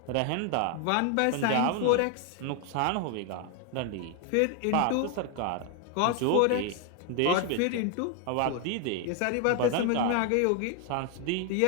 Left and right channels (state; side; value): different; both; correlation 0.01